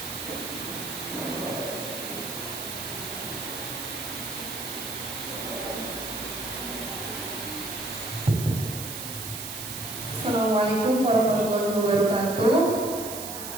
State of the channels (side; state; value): right; noise; hiss, 7 dB below the sound